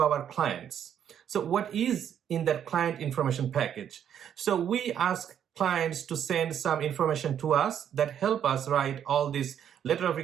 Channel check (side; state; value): left; quieter; 9.3 dB